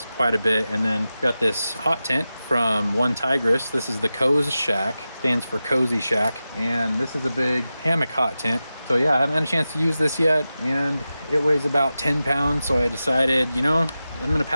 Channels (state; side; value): inverted; both; correlation -0.93